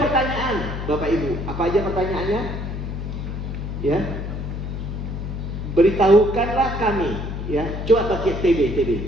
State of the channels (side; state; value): left; noise; hum, 5 dB below the sound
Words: pertanyaan, Bapak Ibu. Apa aja pertanyaannya? Ya, beritahukanlah kami. Ya, coba pakai TB,